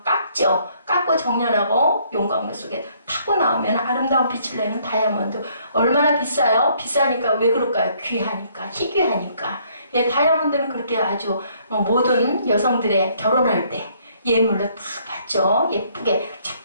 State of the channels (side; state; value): both; inverted; correlation -0.65